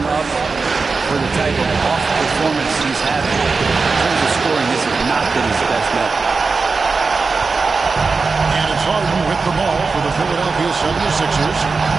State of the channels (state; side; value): quieter; left; 4.4 dB